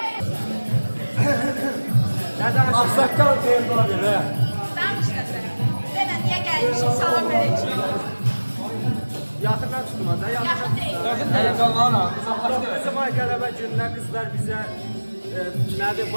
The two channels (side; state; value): both; inverted; correlation -1.00